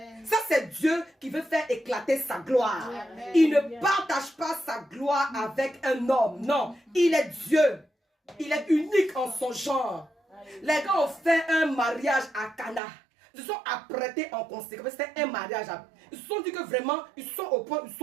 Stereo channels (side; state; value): left; drops out; at 12.8 s